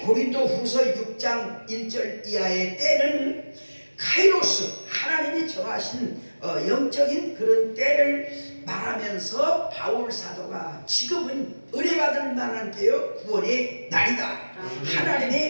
후서 6장 1절 이하의 때는 카이로스, 하나님이 정하신 영적인 그런 때를 말하면서 바울 사도가 지금은 은혜 받을 만한 때요 구원의 날이다.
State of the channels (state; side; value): inverted; both; correlation -1.00